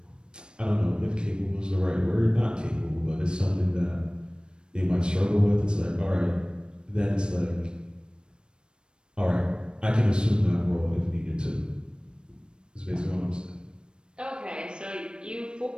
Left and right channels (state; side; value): late; left; 0.053 ms